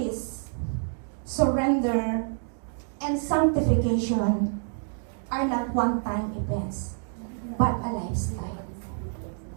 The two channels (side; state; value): left; silent; 60 dB below the other